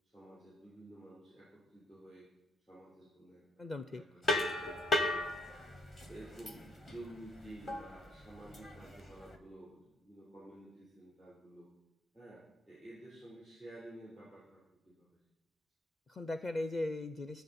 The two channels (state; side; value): normal; both; correlation 0.70